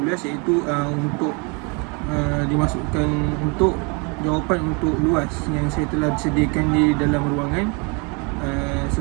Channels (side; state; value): left; quieter; 31.9 dB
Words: iaitu untuk dimasukkan untuk jawapan untuk luas yang saya telah sediakan di dalam ruangan